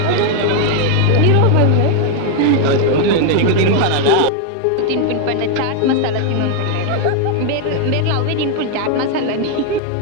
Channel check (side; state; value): both; different; correlation 0.00